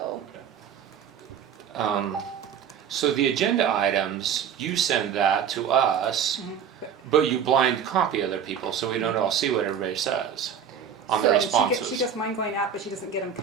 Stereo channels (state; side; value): quieter; left; 7.9 dB